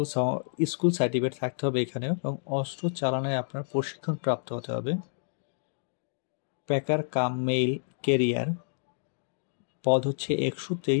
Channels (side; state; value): right; silent; digital silence